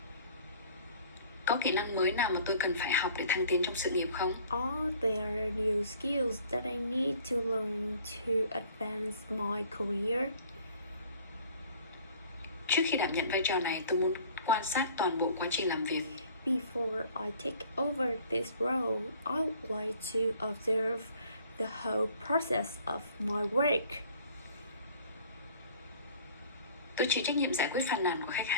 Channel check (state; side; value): inverted; both; correlation -0.53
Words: Có kỹ năng mới nào mà tôi cần phải học để thăng tiến trong sự nghiệp không? Are there new skills that I need to learn to advance my career? Trước khi đảm nhận vai trò này, tôi muốn quan sát toàn bộ quá trình làm việc. Before I take over this role, I would like to observe the whole process of my work. Tôi chịu trách nhiệm giải quyết phàn nàn của khách